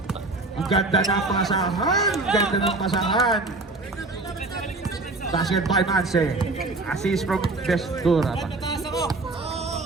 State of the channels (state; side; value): quieter; left; 3.2 dB